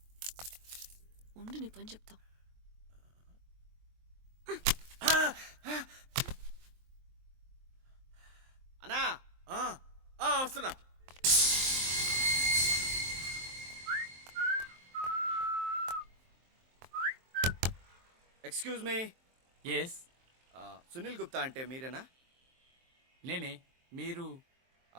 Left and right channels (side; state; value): left; late; 23 ms